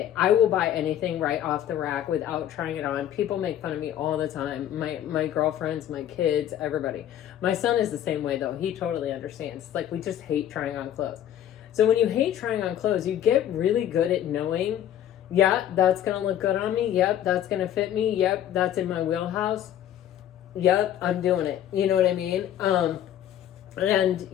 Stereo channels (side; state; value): right; quieter; 11.1 dB